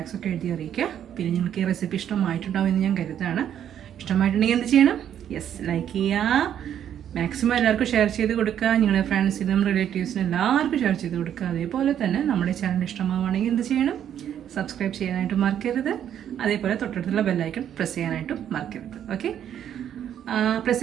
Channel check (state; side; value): quieter; left; 9.8 dB